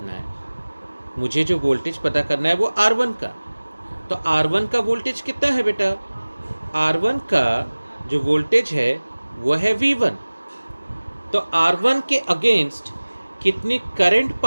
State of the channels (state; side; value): inverted; both; correlation -1.00